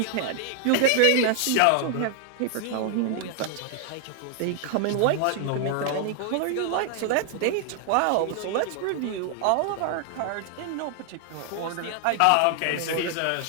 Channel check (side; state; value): both; different; correlation 0.00